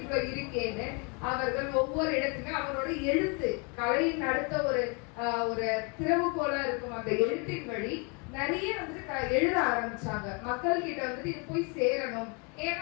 இருக்கேன்னு அவர்கள் ஒவ்வொரு இடத்துலயும் அவரோட எழுத்து கலையின் அடுத்த ஒரு திறவுகோலா இருக்கும் அந்த எழுத்தின் வழி நிறைய வந்துட்டு எழுத ஆரம்பிச்சாங்க. மக்கள் கிட்ட வந்துட்டு இது போய் சேரணும். ஏன்னா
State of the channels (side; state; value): right; quieter; 33.0 dB